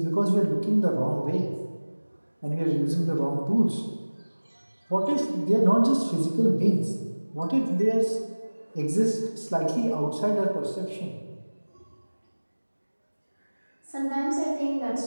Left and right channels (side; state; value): both; inverted; correlation -1.00